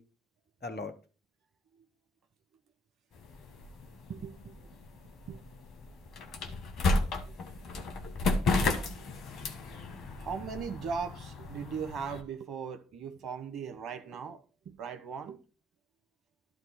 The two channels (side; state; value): both; normal; correlation 0.68